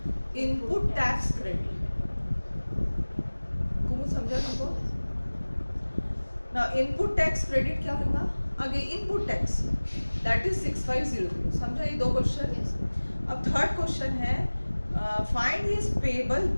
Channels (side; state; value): both; inverted; correlation -1.00